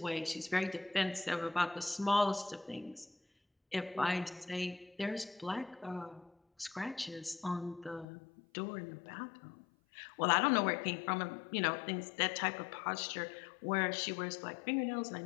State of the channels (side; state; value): right; drops out; at 8.1 s